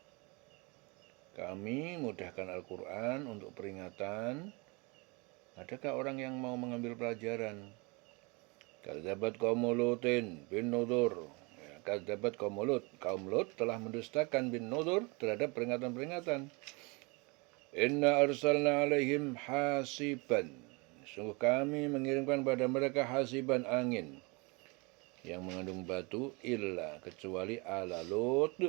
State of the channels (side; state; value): left; quieter; 28.6 dB